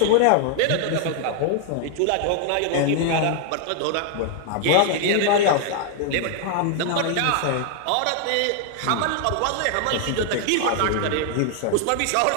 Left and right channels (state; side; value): different; both; correlation 0.00